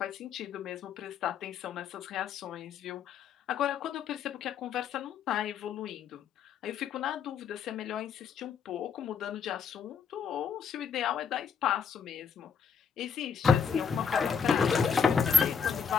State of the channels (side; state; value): right; quieter; 6.9 dB